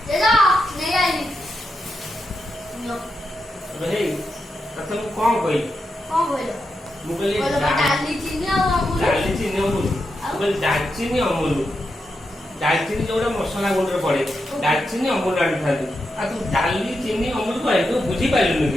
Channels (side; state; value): both; normal; correlation 0.86